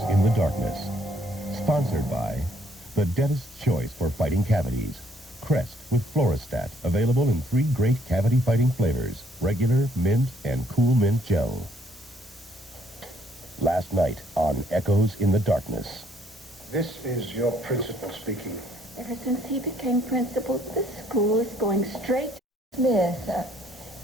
in the Darkness. Sponsored by the dentist's choice for fighting cavities. Crest with Floristat, available in 3 great cavity-fighting flavors, regular, mint, and cool mint gel. Last night on Echoes in the Darkness. This is your principal speaking. Ever since he became principal, this school is going straight. Smith,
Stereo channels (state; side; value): normal; both; correlation 0.66